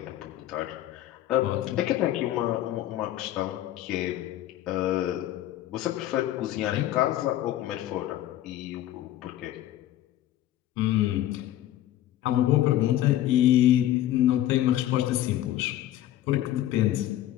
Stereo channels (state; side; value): quieter; right; 13.3 dB